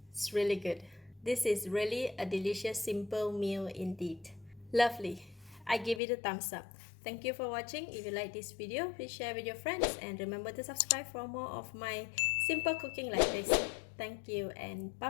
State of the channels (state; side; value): drops out; right; at 6.0 s